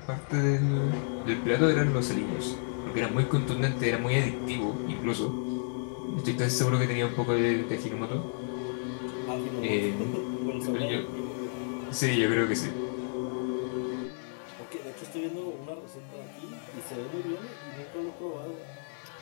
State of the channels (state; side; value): silent; right; 57 dB below the other